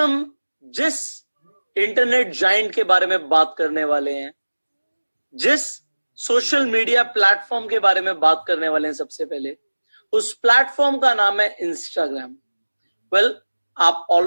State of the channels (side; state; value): both; inverted; correlation -1.00